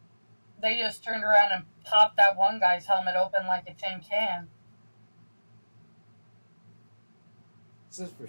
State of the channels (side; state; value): both; inverted; correlation -1.00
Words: They just turned around and popped that one guy's helmet open like a tin can. It's just for